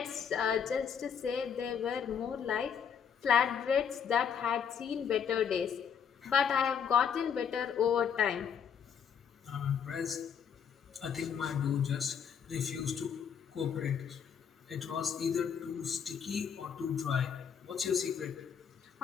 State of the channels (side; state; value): right; quieter; 7.5 dB